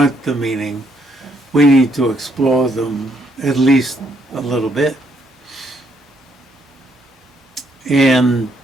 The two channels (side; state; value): both; normal; correlation 0.72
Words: the meaning, we need to explore them at least a little bit. And